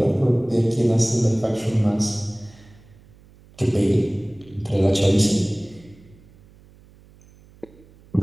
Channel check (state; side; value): noise; right; hum, 26 dB below the sound